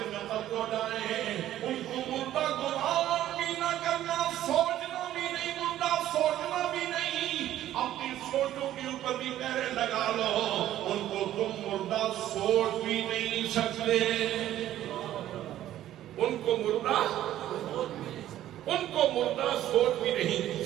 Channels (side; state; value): left; quieter; 12.8 dB